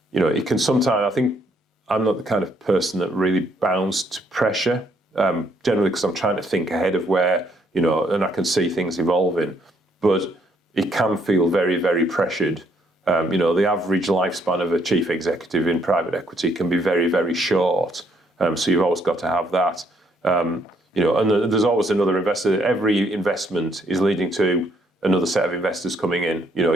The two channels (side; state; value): both; normal; correlation 0.70